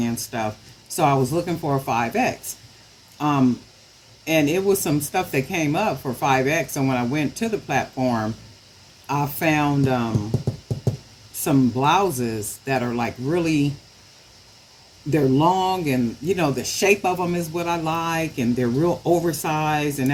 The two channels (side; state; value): both; identical; correlation 1.00